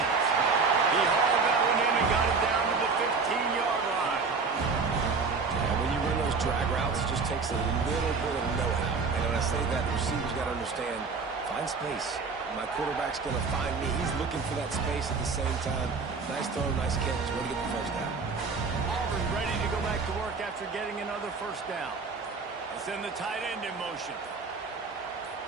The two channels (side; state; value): left; quieter; 4.7 dB